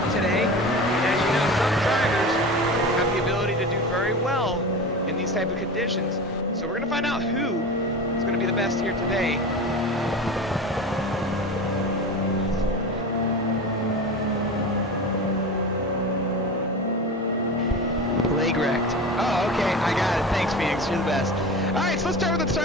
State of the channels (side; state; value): both; normal; correlation 0.30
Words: today. And as you know, some drivers have the ability to do very well in these type of conditions. So we're going to find out who is going to be the best here today. Leg wrecked. Oh, okay, I got it. Thanks, Phoenix. You're the best. All right, so let's start with the